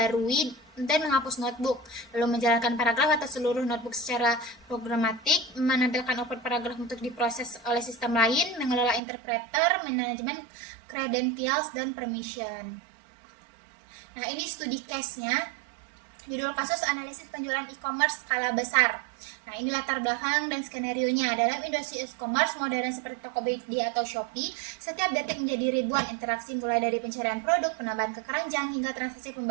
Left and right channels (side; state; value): left; drops out; at 9.0 s